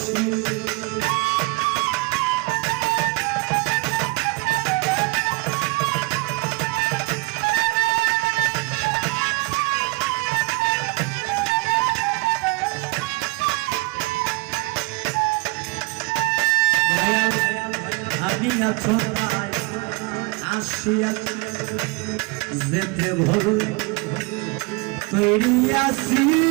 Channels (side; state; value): left; quieter; 27.3 dB